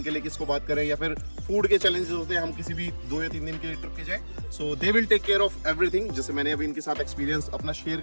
के लिए किसको बात करें या फिर फूड के चैलेंजेस होते हैं, हम किसी भी 2 या 3 दिन के लिए ट्रिप पे जाए। So they will take care of everything. जैसे मैंने अभी इनके साथ एक्सपीरियंस अपना शेयर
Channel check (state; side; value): inverted; both; correlation -1.00